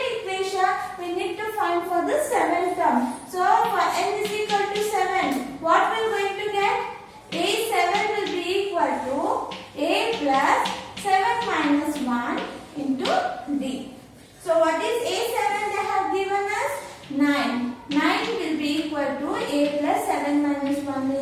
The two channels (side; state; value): both; identical; correlation 1.00